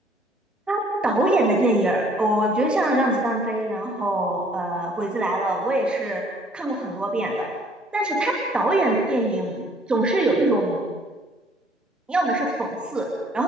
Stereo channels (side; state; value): both; normal; correlation 0.59